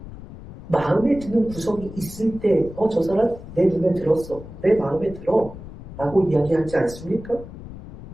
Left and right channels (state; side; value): noise; left; rumble, 14 dB below the sound